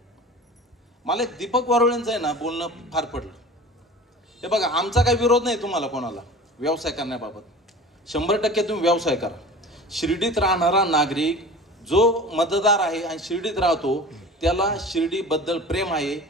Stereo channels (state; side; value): normal; both; correlation 0.38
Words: मला एक दीपक वारुळेंचं आहे ना बोलणं फार पडलं. हे बघा, आमचा काही विरोध नाही तुम्हाला कोणाला व्यवसाय करण्याबाबत, 100% तुम्ही व्यवसाय करा. शिर्डीत राहणारा नागरिक जो मतदार आहे आणि शिर्डीत राहतो त्याला शिर्डीबद्दल प्रेम आहे,